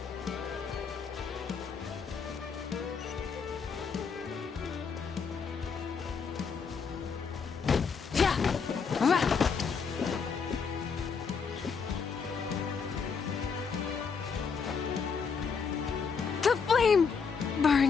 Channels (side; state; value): right; quieter; 5.7 dB